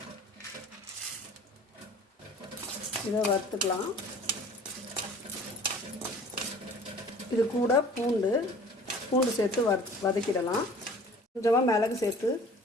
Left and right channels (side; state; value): both; normal; correlation 0.48